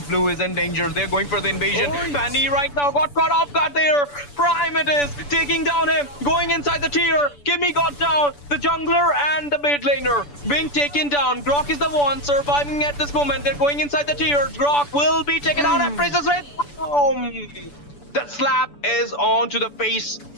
blue is in danger. They're going for the invasion. Fanny right now got caught off guard there. Prime it is taking down him, going inside the tier. Kimmy got down. The jungler and the mid laner being taken down. Grok is the one surviving at this moment. They're going inside the tier. Grok will be taken out and Princess Red. That slap is on to the face,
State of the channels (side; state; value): right; late; 6.9 ms